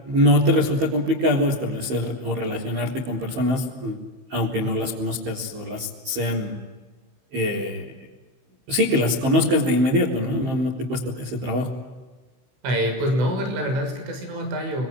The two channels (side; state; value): left; late; 16 ms